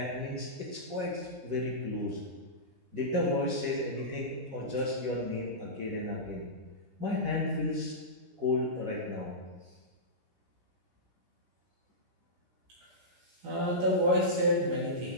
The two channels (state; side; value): late; left; 17 ms